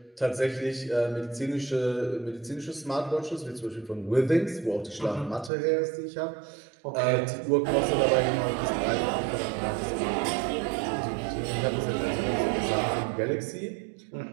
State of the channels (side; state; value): left; drops out; at 5.5 s